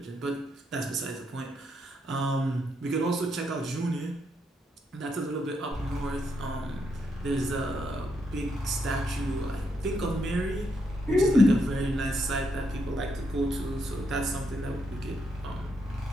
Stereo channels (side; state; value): both; normal; correlation 0.78